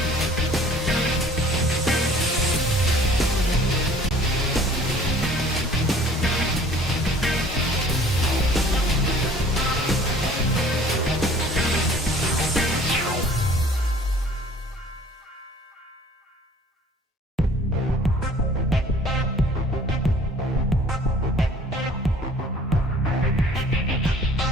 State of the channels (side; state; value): both; normal; correlation 0.52